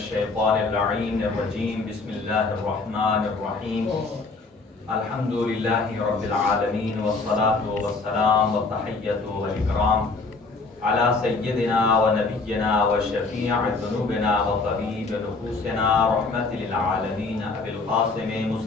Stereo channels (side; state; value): right; quieter; 3.9 dB